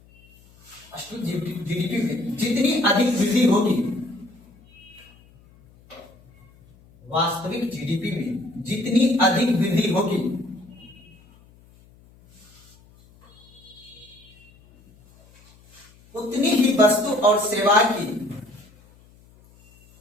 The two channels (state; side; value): noise; left; hum, 28 dB below the sound